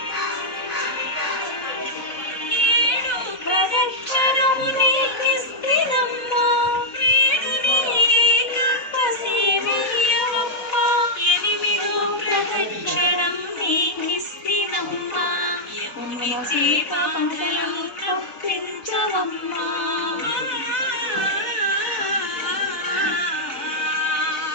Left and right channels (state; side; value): late; right; 4.0 ms